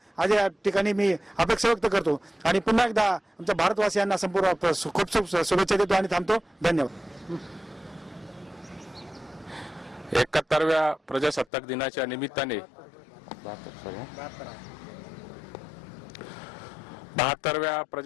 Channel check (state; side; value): drops out; right; at 11.5 s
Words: आज या ठिकाणी मी अपेक्षा व्यक्त करतो. आणि पुन्हा एकदा आमच्या भारतवासियांना संपूर्ण खूप खूप शुभेच्छा देतो आणि थांबतो. धन्यवाद. 71व्या प्रजासत्ताक दिनाच्या निमित्ताने 72व्या